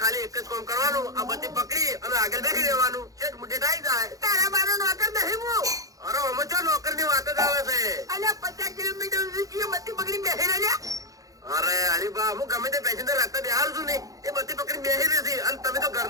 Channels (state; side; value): late; left; 0.17 ms